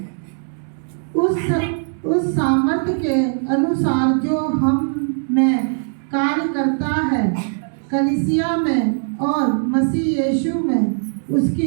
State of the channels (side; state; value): left; silent; 66 dB below the other